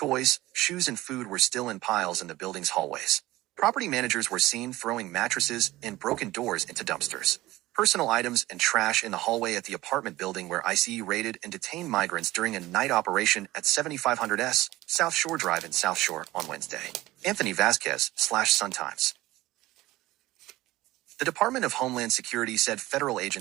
shoes, and food were still in piles in the building's hallways. Property managers were seen throwing mattresses and broken doors into dumpsters. Personal items and trash in the hallway at the apartment building where ICE raided and detained migrants during a night operation at 7500 South Shore Drive in South Shore on Wednesday. Anthony Vasquez, Sun Times. The Department of Homeland Security said federal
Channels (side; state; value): left; quieter; 17.7 dB